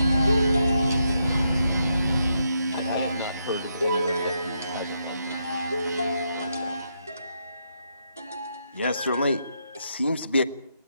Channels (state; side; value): inverted; both; correlation -0.80